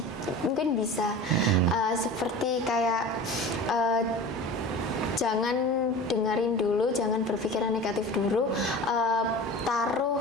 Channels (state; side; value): normal; both; correlation 0.35